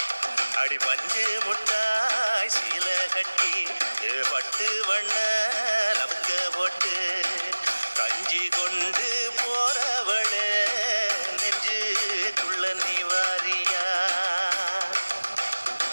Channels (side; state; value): both; inverted; correlation -1.00